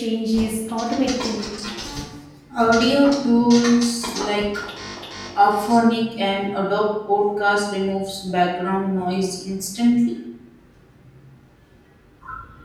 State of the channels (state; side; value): identical; both; correlation 1.00